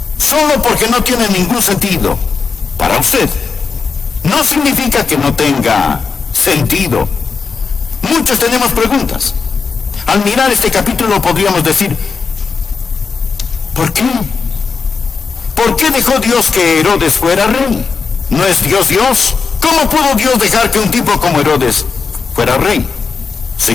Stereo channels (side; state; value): right; quieter; 5.1 dB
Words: Solo porque no tiene ningún sentido para usted, no significa que no tenga sentido. Muchos tenemos preguntas. Al mirar este capítulo podríamos decir, ¿por qué? ¿Por qué dejó Dios que Herodes fuera rey? ¿No es Dios Dios? ¿Cómo pudo Dios dejar que un tipo como Herodes fuera rey? Si